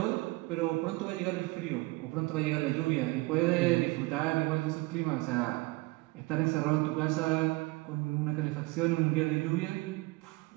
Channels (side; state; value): left; quieter; 23.1 dB